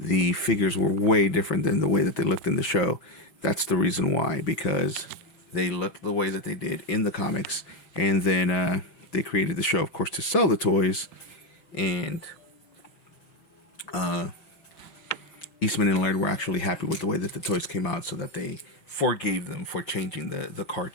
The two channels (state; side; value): late; right; 6.4 ms